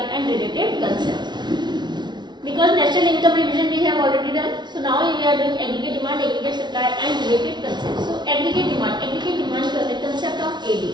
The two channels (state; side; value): late; left; 0.21 ms